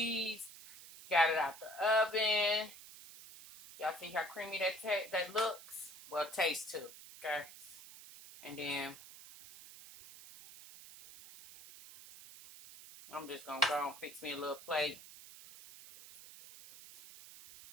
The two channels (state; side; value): noise; right; hiss, 17 dB below the sound